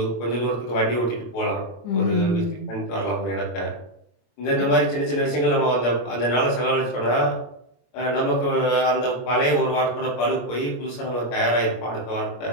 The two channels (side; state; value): right; late; 25 ms